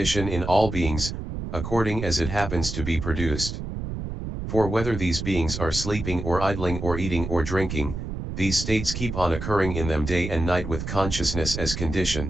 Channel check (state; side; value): noise; right; rumble, 6 dB below the sound